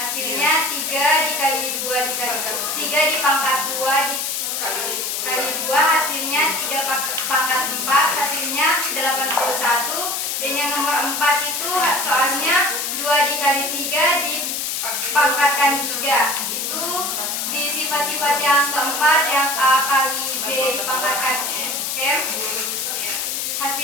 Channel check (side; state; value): left; noise; hiss, 2 dB below the sound